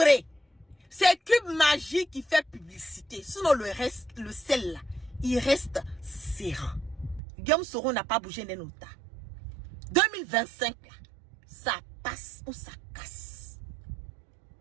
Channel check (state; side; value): drops out; left; at 7.2 s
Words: c'est Q Magie qui fait publicité, sinon le sel là, il reste serein. Guillaume Soro n'a pas bougé d'un nota. 2025 là, ça passe ou ça casse.